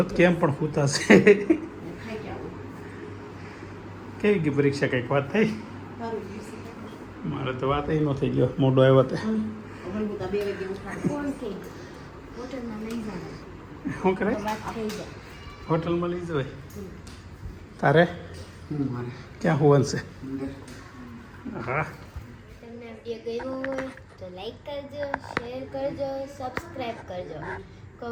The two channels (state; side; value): identical; both; correlation 1.00